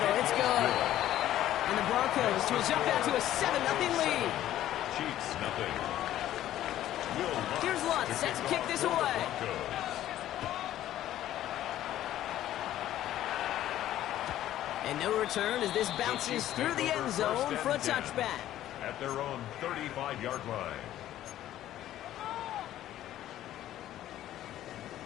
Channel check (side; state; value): right; quieter; 12.9 dB